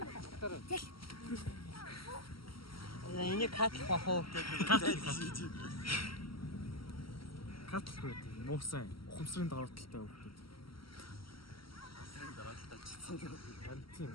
Энийг катлах бахуу гэдэг. Катлах байдаг. Муусан ухамсарын давааталтай хүмүүс. Ухамсарын давааталтай чицсэн.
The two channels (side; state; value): right; late; 0.74 ms